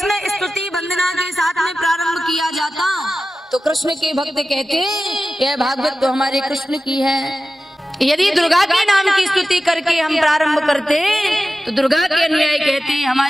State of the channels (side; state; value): both; normal; correlation 0.95